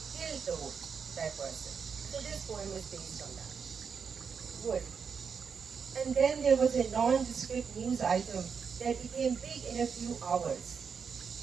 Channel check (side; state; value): left; quieter; 6.2 dB